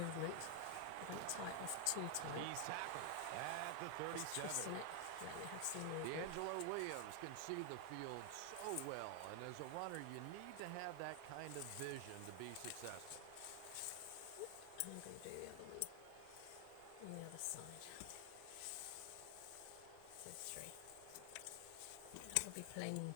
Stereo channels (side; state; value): both; different; correlation 0.00